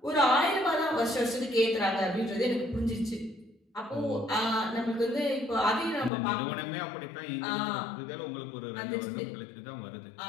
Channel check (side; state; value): right; drops out; at 6.1 s